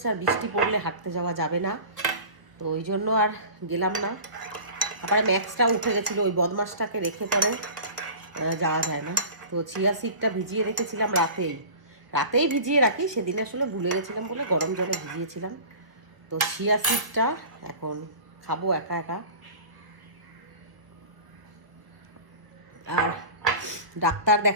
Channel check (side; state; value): left; late; 1.2 ms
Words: আর বৃষ্টি পড়লে হাঁটতে যাওয়া যাবে না, তো ওই জন্য আর গেলাম না। তারপরে ম্যাক্সটাও উঠে গেছিলো, ওই বদমাসটাকে রেখে পরে যাওয়া যায় না। তো চিয়া সিডটা ভিজিয়ে রেখেছিলাম রাতেই ভিজিয়ে রাখি, সেদিন আসলে ভুলে গেছিলাম বলে গরম জলে ভিজিয়েছিলাম। তো চিয়া সিডটা এখন খাবো একা একা। আর ডাক্তার